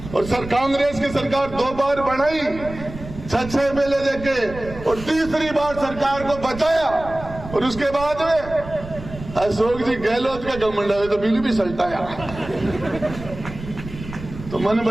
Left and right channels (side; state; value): right; noise; rumble, 13 dB below the sound